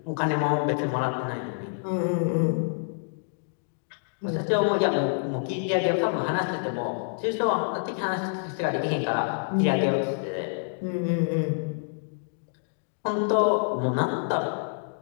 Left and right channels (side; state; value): right; silent; digital silence